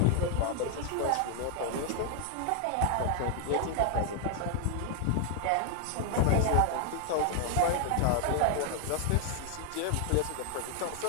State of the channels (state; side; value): different; both; correlation 0.00